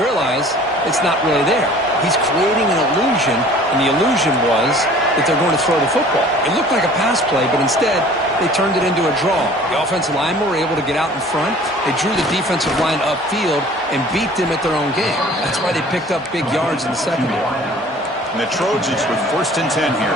realize it's not really there. He's creating an illusion, and the illusion was that they're going to throw the football. It looked like a pass play, but instead they turned it into a draw. The offensive linemen were able to get out in front. They drew the defensive line upfield and beat them at their own game. That's why they picked up big yards in the secondary. And the Trojans with 1st and 10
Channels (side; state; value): both; normal; correlation 0.49